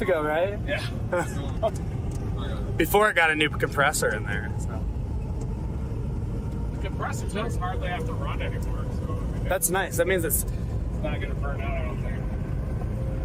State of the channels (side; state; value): both; identical; correlation 1.00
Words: ago, right? Yeah. Before it got a new compressor in there. So. The compressor does hardly have to run anymore, so I mean, That's nice. That means it's not going to burn out, I don't think.